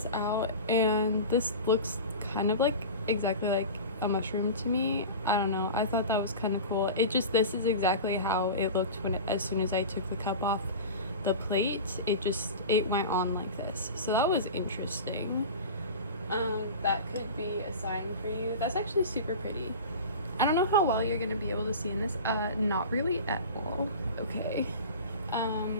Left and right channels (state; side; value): inverted; both; correlation -0.31